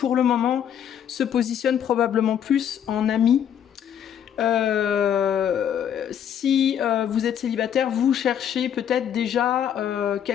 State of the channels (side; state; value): right; quieter; 9.2 dB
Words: le moment se positionne probablement plus en ami. Si vous êtes célibataire, vous cherchez peut-être déjà